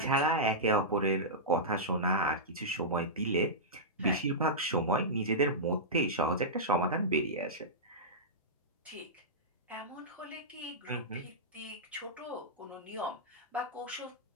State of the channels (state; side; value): normal; both; correlation -0.13